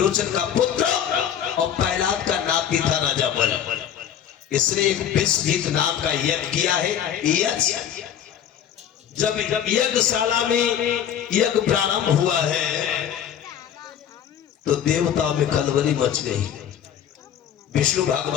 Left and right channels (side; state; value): right; quieter; 9.4 dB